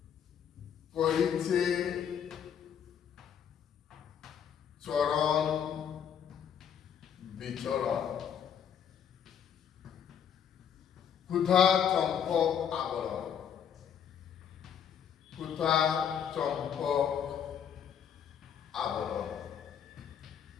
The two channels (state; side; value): quieter; right; 8.3 dB